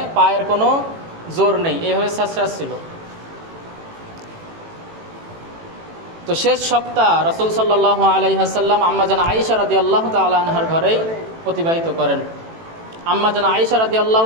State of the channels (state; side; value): late; left; 18 ms